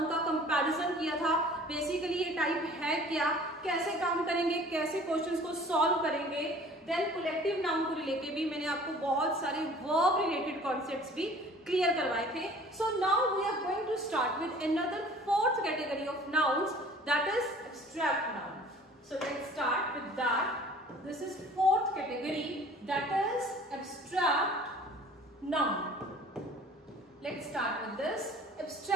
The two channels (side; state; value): both; normal; correlation 0.48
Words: का कंपैरिजन किया था। बेसिकली ये टाइप है क्या, कैसे काम करेंगे, कैसे क्वेश्चंस को सॉल्व करेंगे। देन कलेक्टिव नाउन को लेके भी मैंने आपको बहुत सारे वर्ब रिलेटेड कॉन्सेप्ट्स भी क्लियर करवाए थे। So now we are going to start with another 4th category of nouns, that is abstract noun. So let's start with that. This is 4th category, that is abstract noun. Let's start with this.